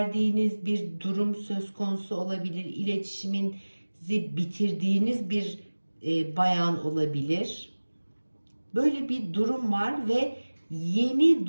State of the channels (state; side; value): inverted; both; correlation -1.00